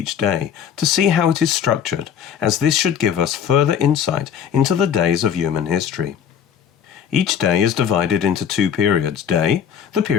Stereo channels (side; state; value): right; quieter; 8.4 dB